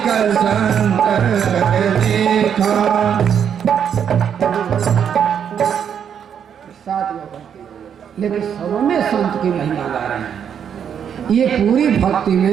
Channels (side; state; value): left; quieter; 8.2 dB